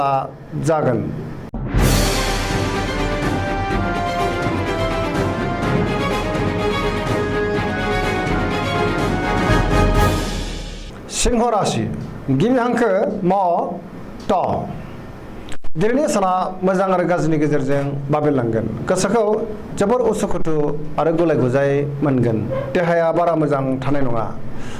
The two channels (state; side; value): identical; both; correlation 1.00